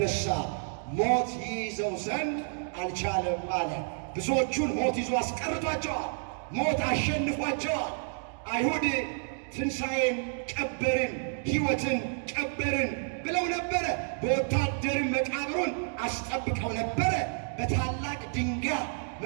ሞት ይይዘው ዘንድ አልቻለም አለ። ብዙዎቹን ሞት ይዞ አስቀርቷቸዋል። ሞት አሸንፏቸዋል። አይሁድ ትንሣኤን ቀበርን፣ ሕይወትን ቀበርን ብለው ነበረ። በወታደርም መቃብሩን አስጠብቀው ነበረ። በታላቅ ድንጋይ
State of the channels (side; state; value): left; silent; 58 dB below the other